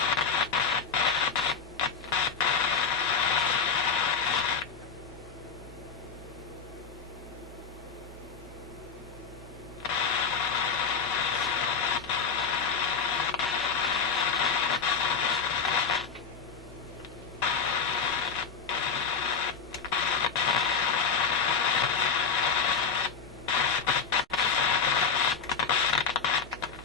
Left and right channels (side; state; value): right; quieter; 5.8 dB